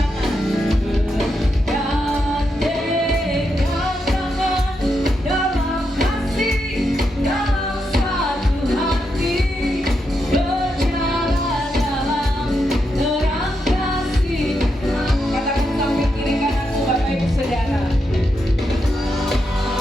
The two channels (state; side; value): normal; both; correlation 0.84